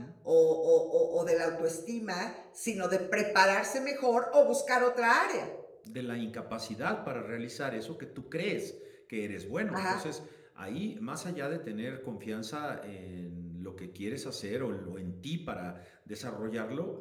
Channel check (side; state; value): both; identical; correlation 1.00